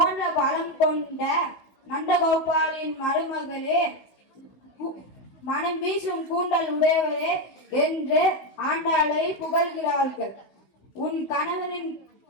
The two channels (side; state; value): right; late; 16 ms